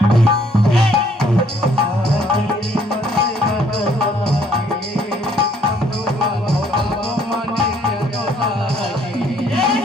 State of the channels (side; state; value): both; normal; correlation 0.64